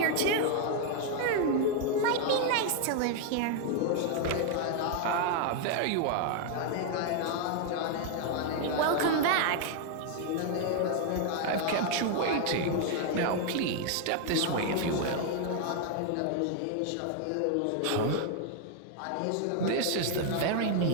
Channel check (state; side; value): different; both; correlation 0.00